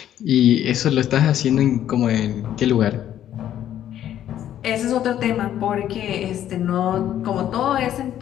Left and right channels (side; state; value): right; quieter; 11.2 dB